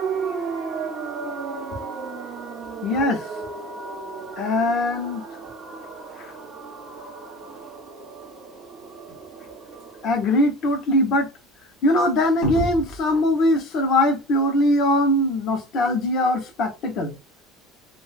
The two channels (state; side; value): normal; both; correlation 0.37